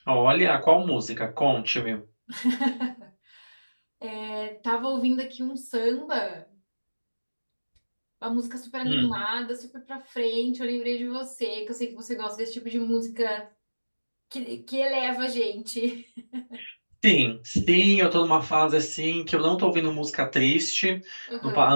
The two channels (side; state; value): both; inverted; correlation -1.00